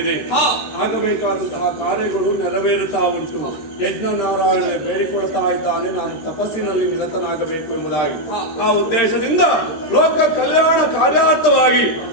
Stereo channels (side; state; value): right; late; 13 ms